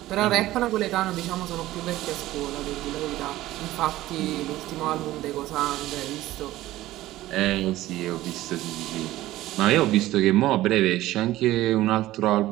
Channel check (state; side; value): quieter; left; 15.9 dB